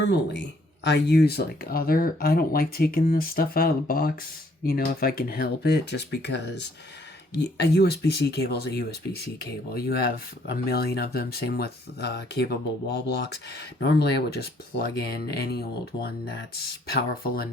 I use I don't like taking this stuff out of the box, you know, if I can help it, just because a USB-C cable is a USB-C cable. You have a million of them, same with capable wall blocks. Normally, I would just plug in any old one that's powerful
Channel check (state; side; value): normal; both; correlation 0.65